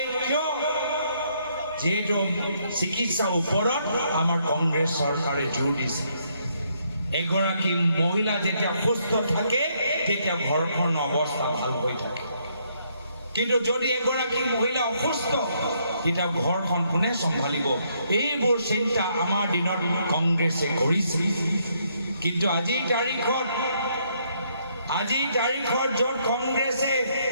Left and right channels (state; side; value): inverted; both; correlation -0.72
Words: কিয় যেহেতু চিকিৎসাৰ ওপৰত আমাৰ কংগ্ৰেছ চৰকাৰে জোৰ দিছে এগৰাকী মহিলা যেতিয়া সুস্থ থাকে তেতিয়া ঘৰখনৰ অৱস্থা ভাল হৈ থাকে কিন্তু যদি এগৰাকী মহিলা অসুস্থ তেতিয়া ঘৰখন কোনে চম্ভালিব এইবোৰ চিন্তা আমাৰ দিনত কংগ্ৰেছে কৰিছিল কিন্তু আজিৰ তাৰিখত য'ত কংগ্ৰেছে